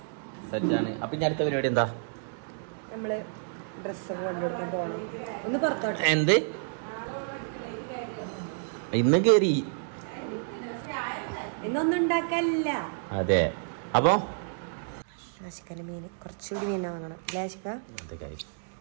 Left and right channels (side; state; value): left; silent; digital silence